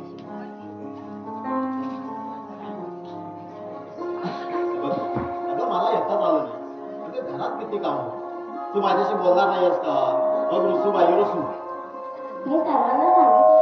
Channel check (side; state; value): both; identical; correlation 1.00